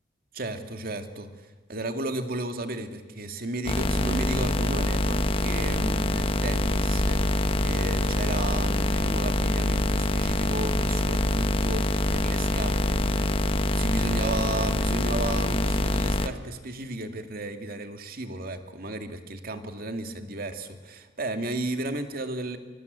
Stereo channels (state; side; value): normal; both; correlation 0.67